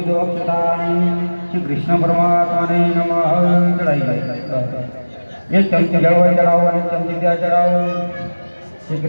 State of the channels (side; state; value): both; inverted; correlation -1.00